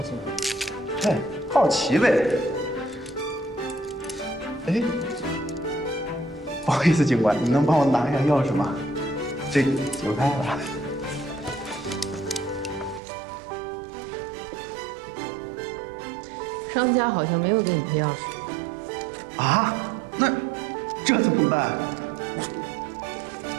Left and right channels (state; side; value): drops out; left; at 13.0 s